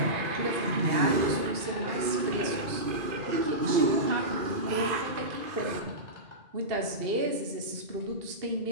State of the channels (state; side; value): late; left; 2.5 ms